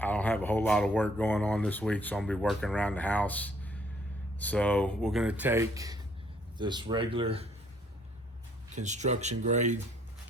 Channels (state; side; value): normal; both; correlation 0.64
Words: I don't have a whole lot of work going on this week, so I'm going to be working around the house. So we're going to take this regular construction grade